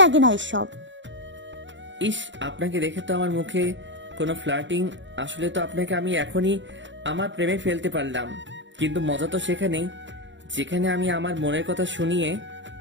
না এসব। ইস, আপনাকে দেখে তো আমার মুখে কোনো ফ্লার্টিং, আসলে তো আপনাকে আমি এখনই আমার প্রেমে ফেলতে পারলাম। কিন্তু মজা তো সেখানেই, যেখানে আমি আমার মনের কথা শুনিয়ে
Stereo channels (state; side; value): late; left; 0.54 ms